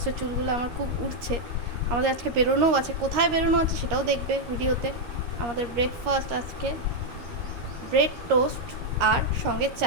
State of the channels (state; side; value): late; left; 13 ms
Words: চুলগুলো আমার খুব উঠছে। আমাদের আজকে বেরোনোও আছে, কোথায় বেরোনো আছে সেটাও দেখবে ভিডিওতে। আমাদের ব্রেকফাস্ট আজকে ব্রেড টোস্ট আর সঙ্গে